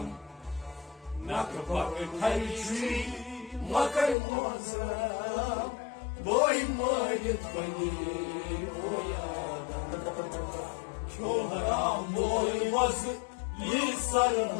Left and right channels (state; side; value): drops out; right; at 4.2 s